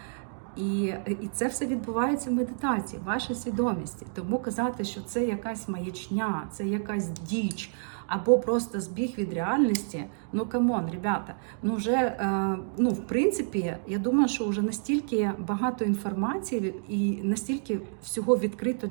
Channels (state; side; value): silent; left; digital silence